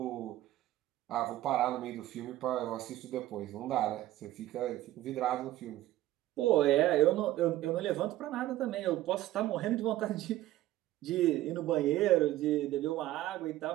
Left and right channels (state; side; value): quieter; left; 15.1 dB